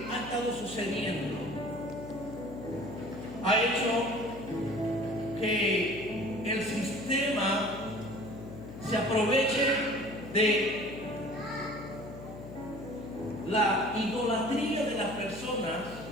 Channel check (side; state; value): left; noise; hum, 12 dB below the sound